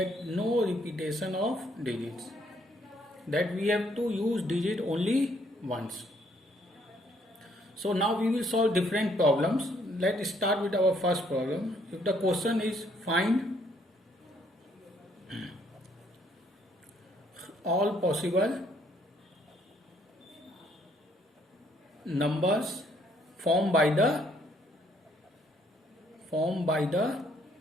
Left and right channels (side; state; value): both; normal; correlation 0.67